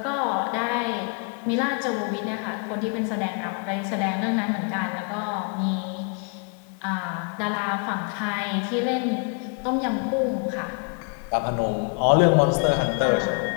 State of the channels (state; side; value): quieter; right; 36.3 dB